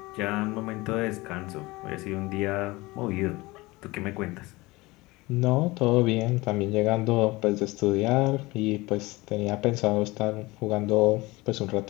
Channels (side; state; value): right; quieter; 21.7 dB